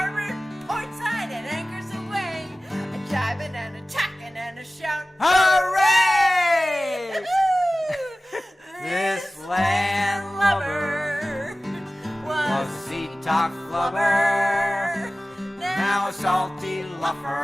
port side, and anchors away. A jibing and a tacking and a shout. Hooray! This land lover was a sea talk flubber, now a salty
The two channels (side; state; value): both; normal; correlation 0.97